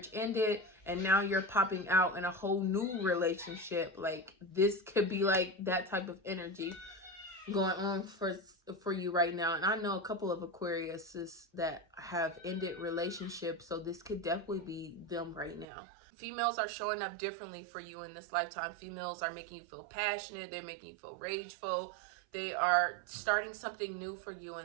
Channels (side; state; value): left; drops out; at 15.7 s